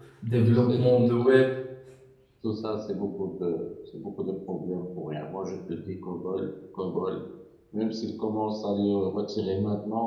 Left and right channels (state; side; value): identical; both; correlation 1.00